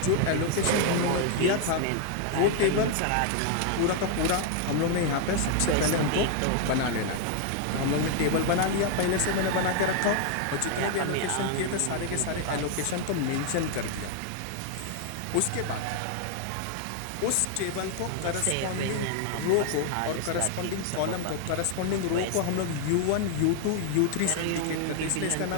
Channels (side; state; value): both; different; correlation 0.00